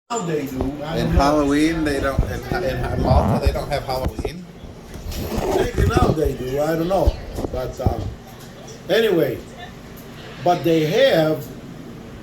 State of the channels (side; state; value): both; identical; correlation 1.00